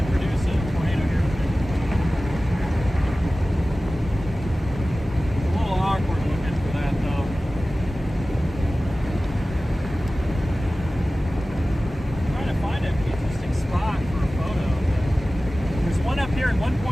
produce a tornado here. A little awkward looking for that though. I'm trying to find an interesting spot for a photo. There's one up here at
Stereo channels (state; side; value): normal; both; correlation 0.96